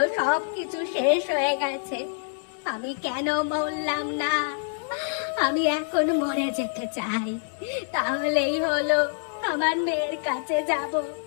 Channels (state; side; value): silent; right; 61 dB below the other